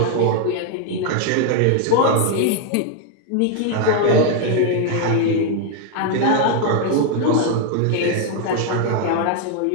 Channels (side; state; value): both; different; correlation 0.01